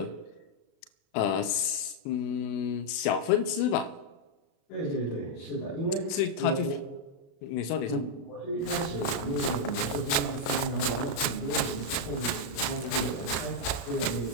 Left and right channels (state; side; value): late; right; 36 ms